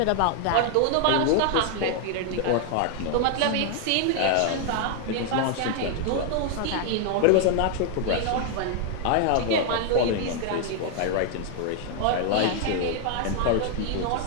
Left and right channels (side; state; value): both; different; correlation 0.00